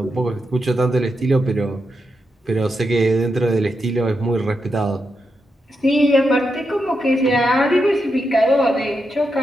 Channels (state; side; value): normal; both; correlation 0.85